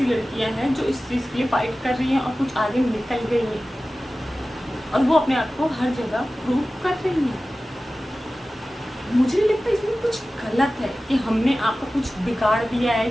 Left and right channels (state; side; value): normal; both; correlation 0.96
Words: लड़कियां हैं जो इस चीज़ के लिए फाइट कर रही हैं और कुछ आगे निकल गई हैं और वो अपने आप को हर जगह प्रूव कर रही हैं। मुझे नहीं लगता इसमें कुछ गलत है कि हमने आपका कुछ बिगाड़ दिया